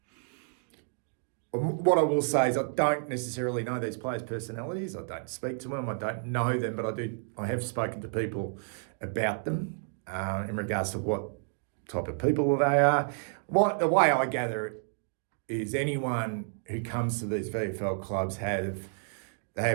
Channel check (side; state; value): left; silent; 57 dB below the other